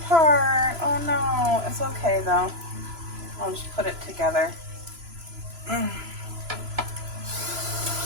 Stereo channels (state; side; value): late; left; 3.0 ms